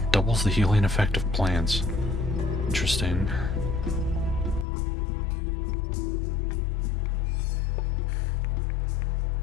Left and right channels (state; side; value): drops out; right; at 4.7 s